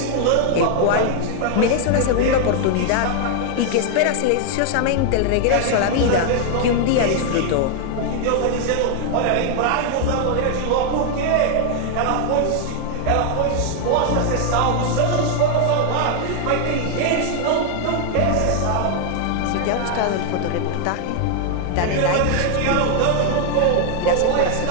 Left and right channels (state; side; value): different; both; correlation 0.00